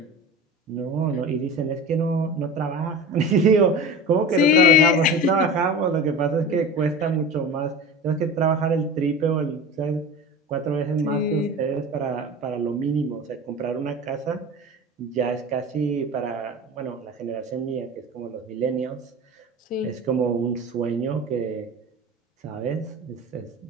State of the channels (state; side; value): normal; both; correlation 0.32